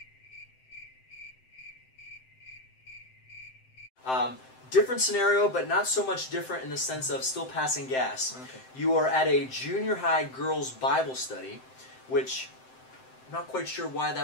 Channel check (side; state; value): right; late; 7.7 ms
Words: Different scenario, but not so much different in the sense of still passing gas. Okay. You are at a junior high girls' Bible study, which I'm not quite sure why